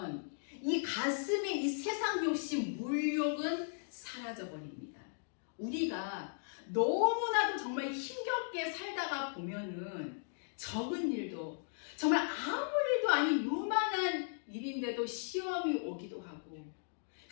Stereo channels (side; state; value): right; silent; digital silence